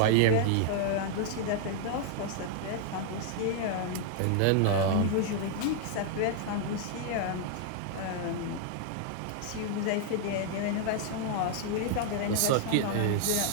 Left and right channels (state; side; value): different; both; correlation 0.00